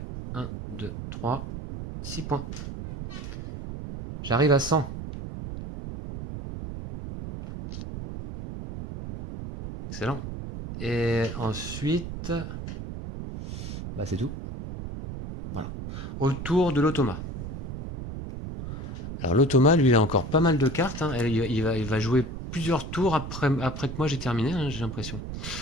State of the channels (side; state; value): right; noise; rumble, 8 dB below the sound